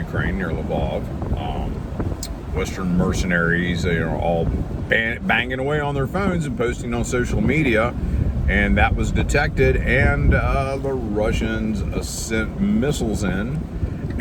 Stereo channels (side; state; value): both; identical; correlation 1.00